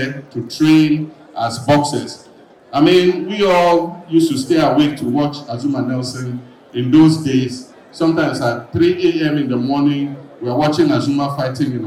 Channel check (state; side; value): identical; both; correlation 1.00